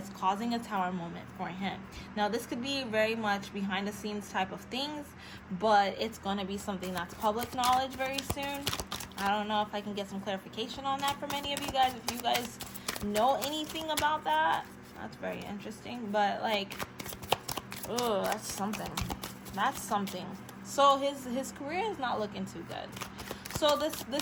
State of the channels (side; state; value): both; identical; correlation 1.00